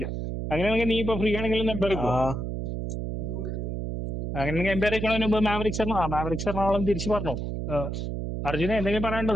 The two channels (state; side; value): noise; right; hum, 4 dB below the sound